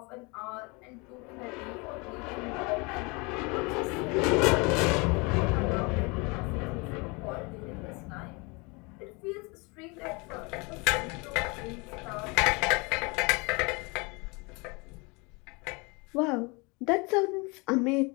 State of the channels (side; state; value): right; quieter; 28.6 dB